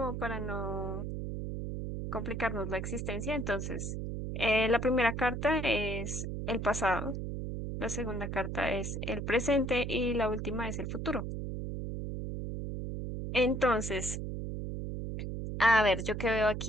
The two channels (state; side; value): noise; right; hum, 4 dB below the sound